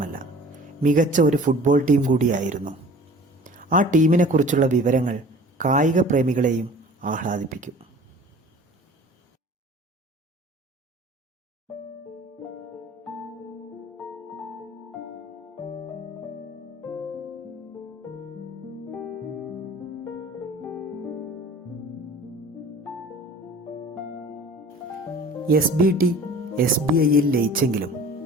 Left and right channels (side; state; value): both; normal; correlation 0.45